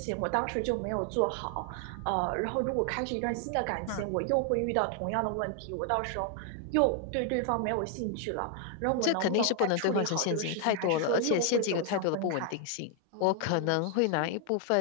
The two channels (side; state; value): both; different; correlation 0.00